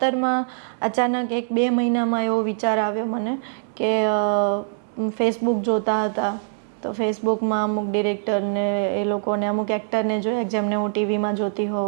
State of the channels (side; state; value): left; silent; digital silence